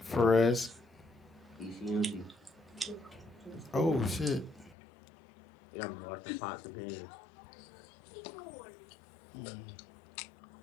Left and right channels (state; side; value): drops out; right; at 4.8 s